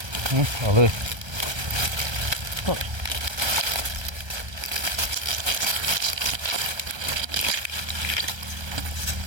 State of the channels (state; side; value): late; left; 1.3 ms